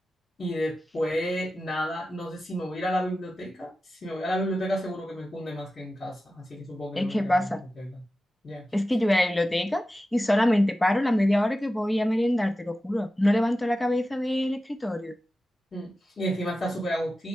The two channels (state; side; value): normal; both; correlation 0.94